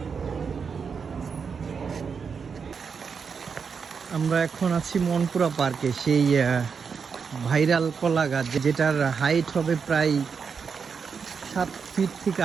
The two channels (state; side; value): quieter; left; 6.0 dB